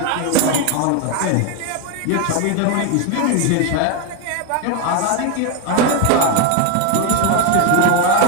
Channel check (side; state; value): both; different; correlation 0.02